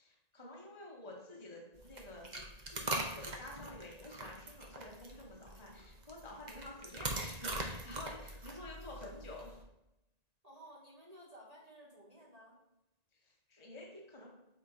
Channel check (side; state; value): left; late; 1.9 ms